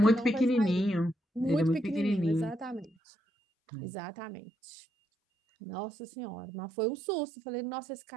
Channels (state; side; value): drops out; left; at 2.9 s